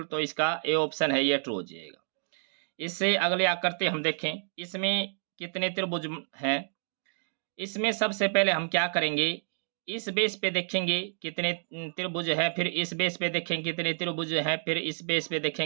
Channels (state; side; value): silent; left; digital silence